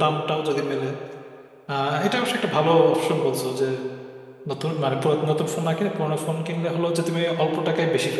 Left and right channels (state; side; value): identical; both; correlation 1.00